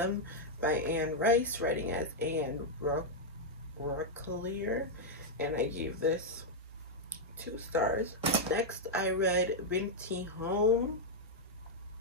by Anne Rice, writing as Anne Rockelier, and I gave this 2 stars. Next, I read O.emme.he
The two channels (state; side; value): normal; both; correlation -0.03